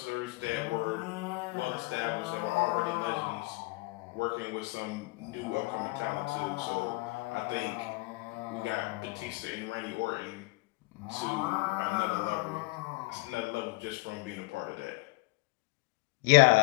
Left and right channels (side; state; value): right; quieter; 24.5 dB